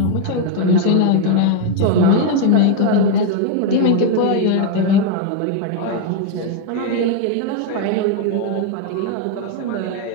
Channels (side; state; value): both; different; correlation 0.01